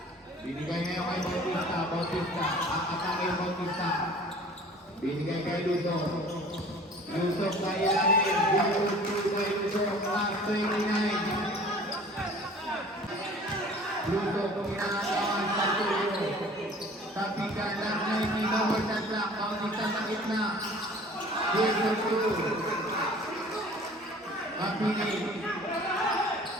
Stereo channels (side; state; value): both; normal; correlation 0.47